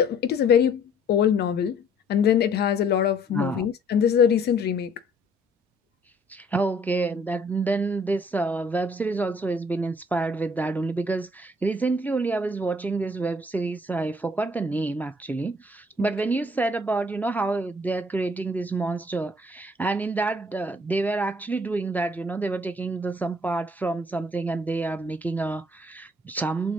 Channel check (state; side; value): normal; both; correlation 0.59